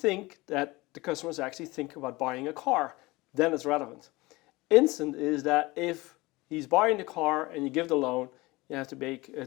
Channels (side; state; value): right; quieter; 21.7 dB